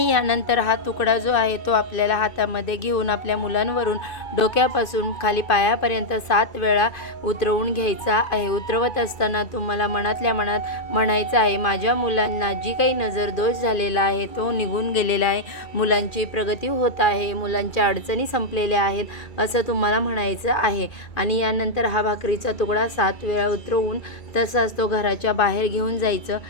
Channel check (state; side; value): late; right; 2.5 ms